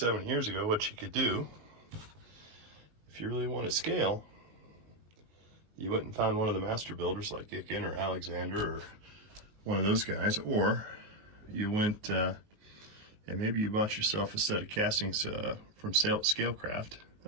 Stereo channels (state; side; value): late; left; 19 ms